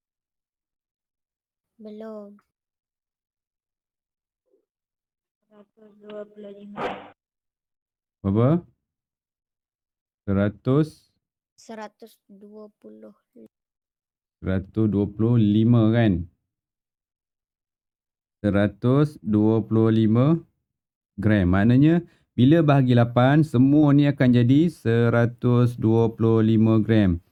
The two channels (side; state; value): both; identical; correlation 1.00